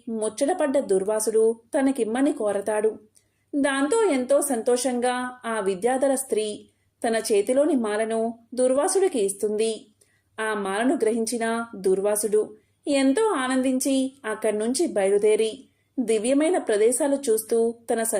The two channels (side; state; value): both; identical; correlation 1.00